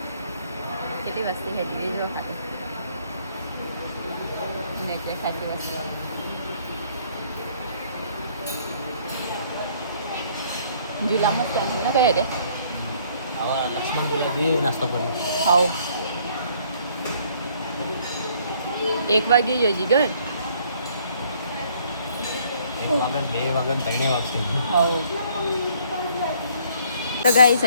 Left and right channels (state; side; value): inverted; both; correlation -0.63